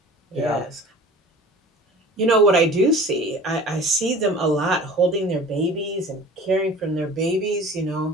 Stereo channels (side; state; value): both; normal; correlation 0.43